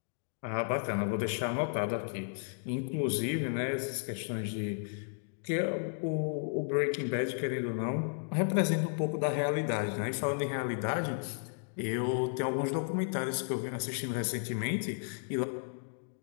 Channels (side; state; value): right; silent; digital silence